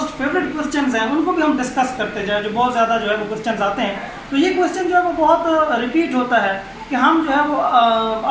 फेवरेट क्वेश्चंस हैं उनको भी हम डिस्कस करते जाए, जो बहुत ज़्यादा जो है वो क्वेश्चंस आते हैं। तो ये क्वेश्चन जो है वो बहुत रिपीट होता है कि हम जो है वो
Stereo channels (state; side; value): identical; both; correlation 1.00